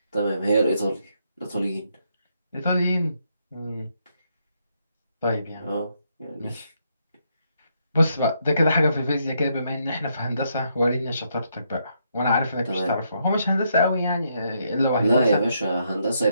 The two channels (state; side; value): inverted; both; correlation -0.76